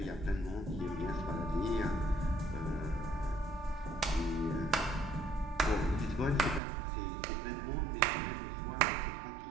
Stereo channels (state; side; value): drops out; left; at 6.6 s